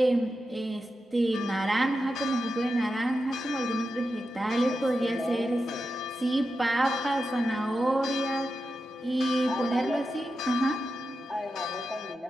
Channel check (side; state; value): both; normal; correlation 0.90